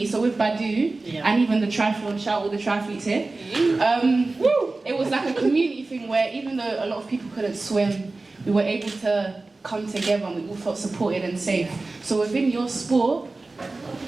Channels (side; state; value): left; quieter; 3.4 dB